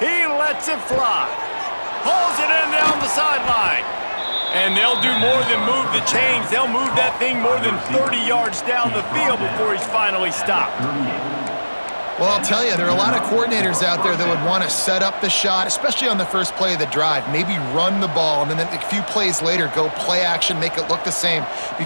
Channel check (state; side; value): inverted; both; correlation -1.00